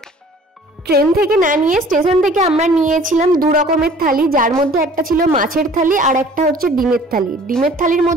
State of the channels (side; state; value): both; normal; correlation 0.51